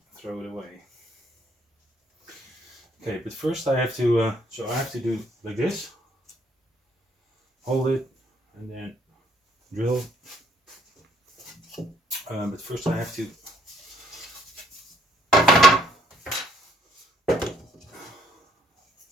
throw it away. Okay, but first I have to. So I have to do like this. Hold it, and then drill. But first I have to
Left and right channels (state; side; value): normal; both; correlation 0.65